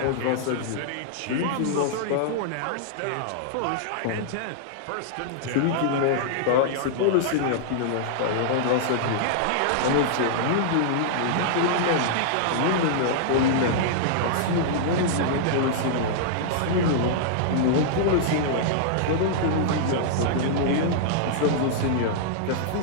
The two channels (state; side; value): different; both; correlation -0.02